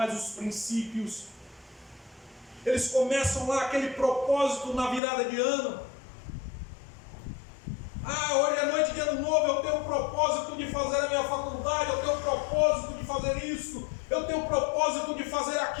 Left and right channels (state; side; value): drops out; right; at 5.0 s